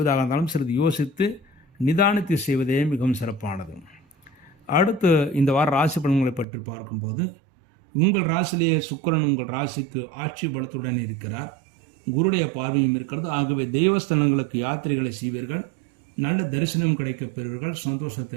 இருந்தாலும் சிறிது யோசித்து நிதானித்து செய்வதே மிகவும் சிறப்பானது. அடுத்து இந்த வார ராசி பலன்களை பற்றி பார்க்கும்போது உங்கள் ராசியிலேயே சுக்கிரன் உங்கள் ராசிக்கு ஆட்சி பலத்துடன் இருக்கிறார். குருடைய பார்வையும் இருக்கிறது. ஆகவே தெய்வஸ்தலங்களுக்கு யாத்திரைகளை செய்வீர்கள். நல்ல தரிசனம் கிடைக்கப் பெறுவீர்கள்,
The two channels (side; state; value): left; drops out; at 6.5 s